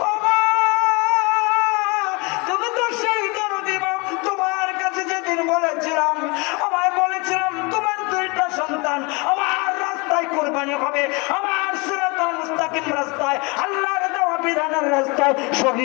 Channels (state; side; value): quieter; right; 28.3 dB